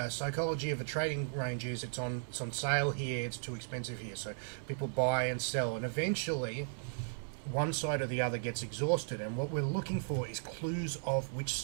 psychology of a trading range is it's on sale here, it's too expensive here. So people buy and sell, and eventually one side or the other gets exhausted, and what we're looking for is clues of which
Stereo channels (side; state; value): left; silent; 54 dB below the other